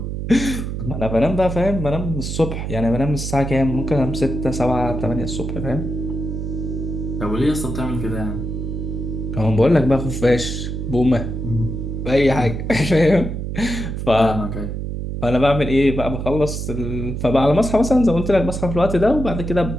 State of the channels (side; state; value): right; noise; hum, 4 dB below the sound